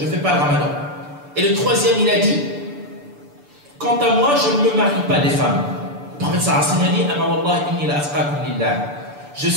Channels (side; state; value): left; late; 6.9 ms